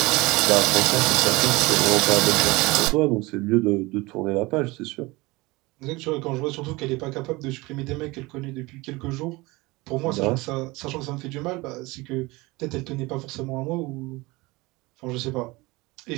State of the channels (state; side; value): quieter; left; 22.6 dB